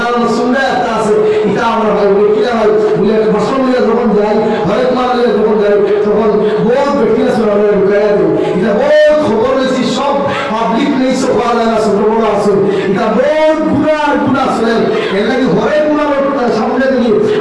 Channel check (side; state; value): both; identical; correlation 1.00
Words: সুন্দর একটা আছে এটা আমরা ভাই কিনা ভাই বলে বাসন নিয়ে যখন যাই হরেক মাল নিয়ে যখন যাই তখন বহুত ব্যক্তি আছে আমরা ঢুকাই দিই এটা বহুত খবর হয়েছি সব পাবলিক নেই সব পাওয়া যায় না ছোট বড় আছে এটা বহুত গুণা আছে এর লাগে হরেক গুণার সামনে দিকে